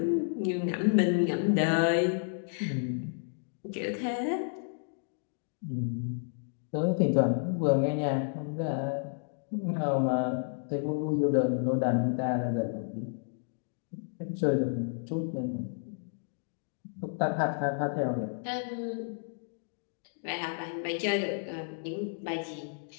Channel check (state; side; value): silent; right; digital silence